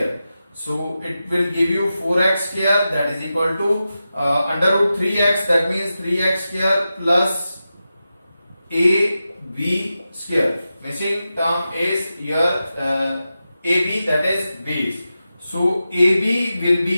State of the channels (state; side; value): inverted; both; correlation -0.91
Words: So it will give you 4x square, that is equal to under root 3x, that means 3x square plus AB square. Missing term is your AB, that is base. So AB will